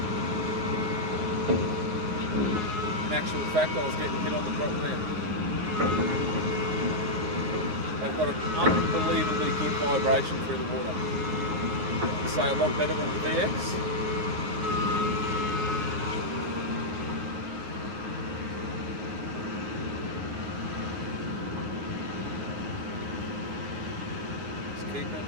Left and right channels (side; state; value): left; late; 9.4 ms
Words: In actual fact, I was getting hit on the drop there. They've got an unbelievably good vibration through the water. I'd say a lot better than the VX. Just keeping it